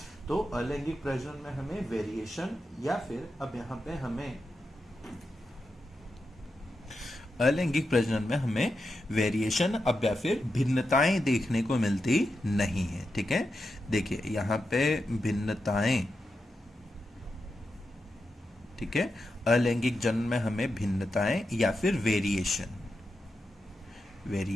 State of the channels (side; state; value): both; normal; correlation 0.88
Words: तो अलैंगिक प्रजनन में हमें वेरिएशन या फिर अब यहाँ पे हमें अलैंगिक प्रजनन में हमें वेरिएशन अब या फिर भिन्नताएं देखने को मिलती नहीं है। ठीक है, देखिए यहाँ पे भिन्नताएं, ठीक है, अलैंगिक जनन में हमें भिन्नताएं या फिर